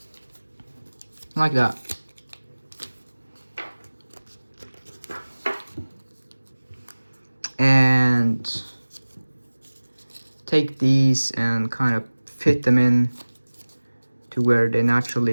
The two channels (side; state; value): both; inverted; correlation -1.00